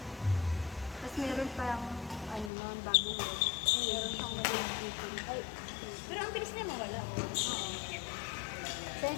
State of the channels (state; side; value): drops out; right; at 2.5 s